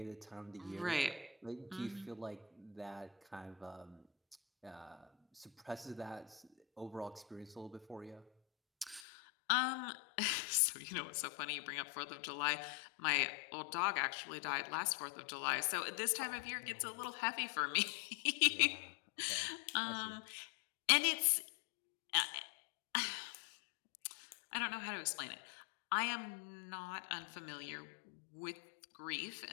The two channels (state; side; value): drops out; right; at 9.0 s